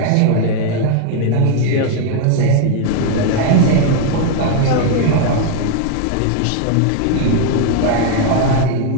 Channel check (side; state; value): both; different; correlation 0.00